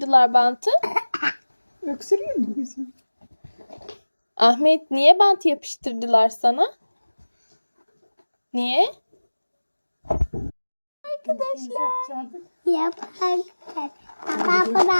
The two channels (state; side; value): inverted; both; correlation -1.00